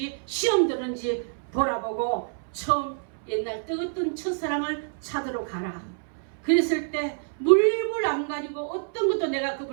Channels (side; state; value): left; silent; 60 dB below the other